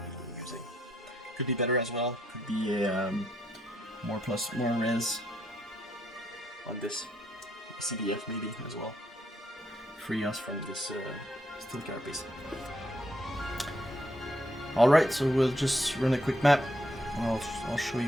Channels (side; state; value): both; normal; correlation 0.76